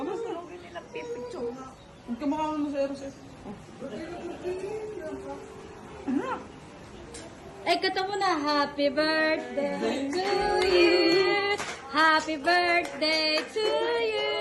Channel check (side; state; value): both; identical; correlation 1.00